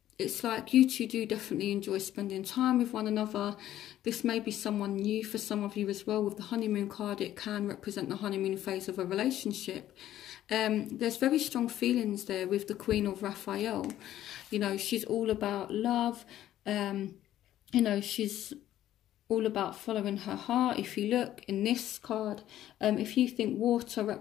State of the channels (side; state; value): right; quieter; 12.7 dB